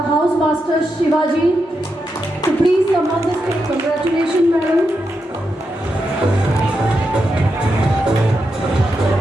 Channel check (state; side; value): normal; both; correlation 0.85